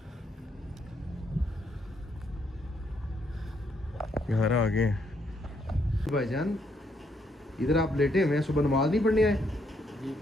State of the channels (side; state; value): both; normal; correlation 0.74